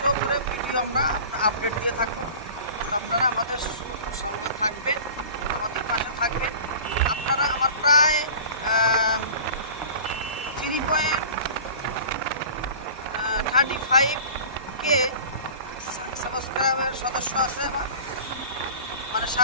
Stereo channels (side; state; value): both; inverted; correlation -0.40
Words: করে ভিডিও আমরা আপডেট দিয়ে থাকবো। আপনারা আমাদের সঙ্গে থাকবেন, আমাদের পাশে থাকবেন। আপনারা আমার প্রায় 3.35K সাবস্ক্রাইবার সদস্য আছে আমার, মানে